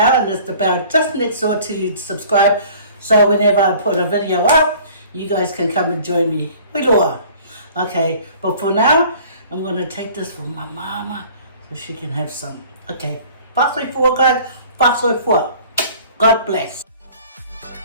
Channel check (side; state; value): both; inverted; correlation -0.50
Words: and there's the bell just next door to subscribe. So whenever I put a video up, you guys can come and join me. Okay, but for now, I'm going to take this for my mama so she can have some. Okay, fast way forward, guys. Fast way forward. God bless.